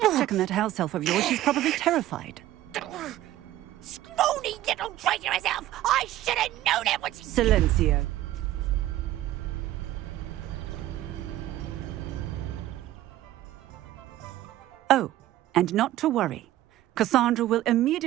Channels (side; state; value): left; quieter; 14.3 dB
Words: on that house elf of yours. She's probably terrified. Scrawny little traitor herself! I should have known it was... Silencio. Oh, and not to worry. Cassandra will